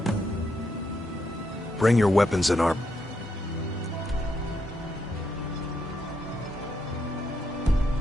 Bring your weapons and armor.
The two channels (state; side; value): normal; both; correlation 0.79